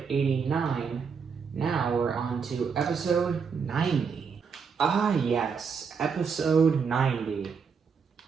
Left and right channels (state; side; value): quieter; left; 6.0 dB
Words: 89. Now we're on to episode 90. Ah yes, episode 90.